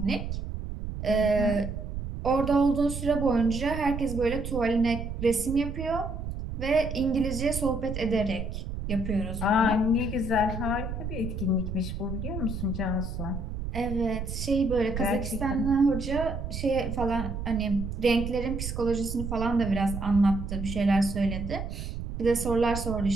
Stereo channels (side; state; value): right; noise; rumble, 6 dB below the sound